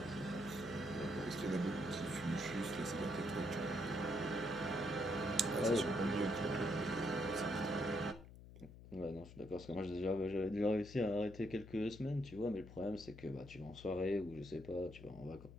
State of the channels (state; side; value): noise; left; hum, 16 dB below the sound